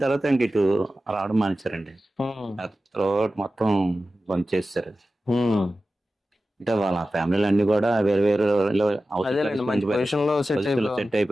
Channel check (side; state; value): both; normal; correlation 0.94